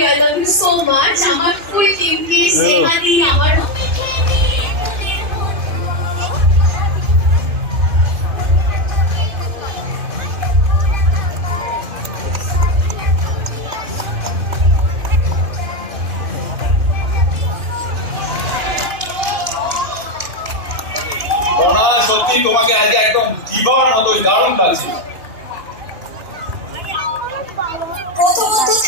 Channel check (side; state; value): left; late; 2.5 ms